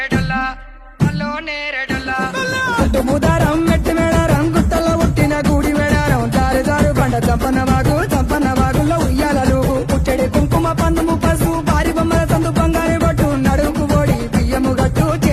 అల్లో నేరెడల్లా గుట్టు బుధారం మెట్టి మేడారం గుట్టల్లో పుట్టిన గూడి మేడారం జారు జారు బండ చంపన్న వాగుల్లో ఉయ్యాలలు పుట్టెడి కుంకుమ పందుము పసుపు భారీ బొమ్మల సందు బంగారు బట్టు నడుముకు ఓడి బియ్యము గట్టు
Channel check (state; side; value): identical; both; correlation 1.00